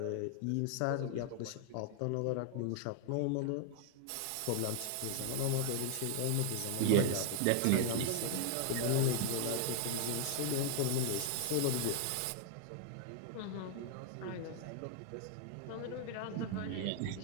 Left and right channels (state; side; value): different; both; correlation 0.00